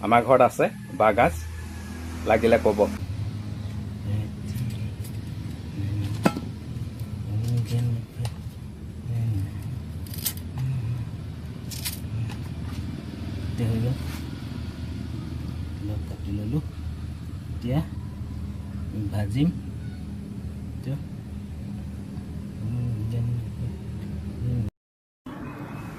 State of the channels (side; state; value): both; identical; correlation 1.00